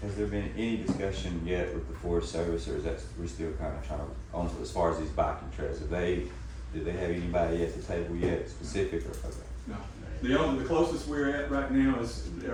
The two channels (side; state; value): both; identical; correlation 1.00